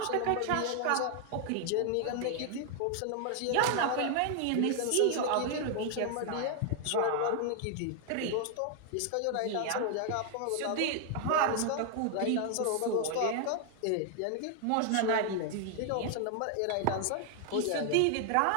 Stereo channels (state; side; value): different; both; correlation 0.00